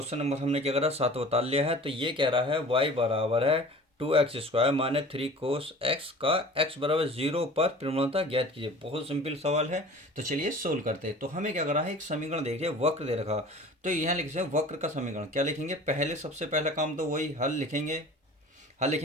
number हमने क्या करा 7 बता लिया है। तो ये कह रहा है y बराबर है 2x² माइनस 3 कोस x का x बराबर 0 पर प्रवणता ज्ञात कीजिए। बहुत सिंपल सवाल है। तो चलिए सोल्व करते हैं। तो हमें क्या करा है, एक समीकरण देखिए, वक्र दे रखा। तो यहाँ लिख सकते हैं वक्र का समीकरण। क्या लिखेंगे, पहले सबसे पहला काम तो वही हल लिखेंगे। हल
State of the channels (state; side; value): normal; both; correlation 0.42